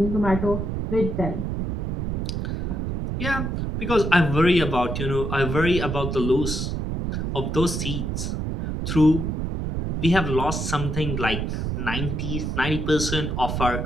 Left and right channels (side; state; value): right; noise; rumble, 2 dB below the sound